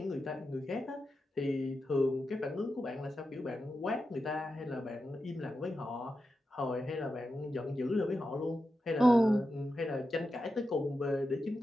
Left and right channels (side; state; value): both; normal; correlation 0.90